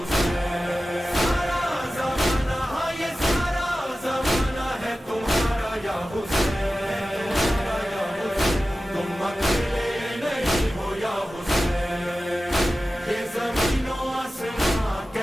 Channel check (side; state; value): both; normal; correlation 0.95